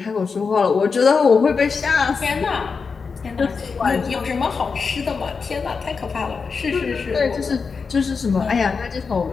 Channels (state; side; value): quieter; right; 5.1 dB